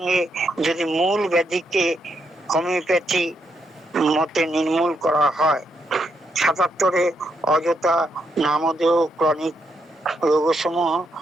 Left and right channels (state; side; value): normal; both; correlation 0.79